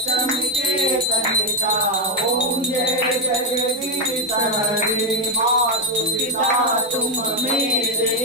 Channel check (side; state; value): both; normal; correlation 0.04